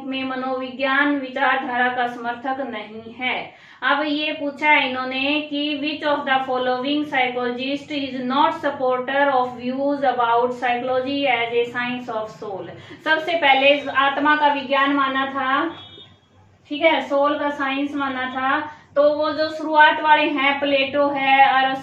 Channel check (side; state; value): both; identical; correlation 1.00